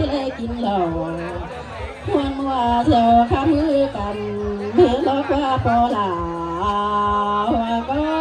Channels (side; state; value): both; identical; correlation 1.00